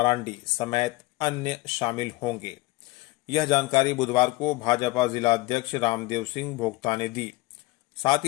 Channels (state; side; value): quieter; right; 21.0 dB